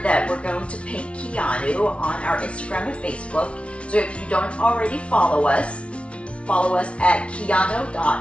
we're going to paint Keanu on our Instagram and Facebook. So if you don't already follow us at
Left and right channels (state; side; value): late; right; 0.061 ms